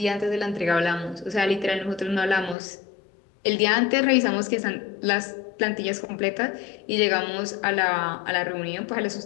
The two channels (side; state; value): right; drops out; at 2.6 s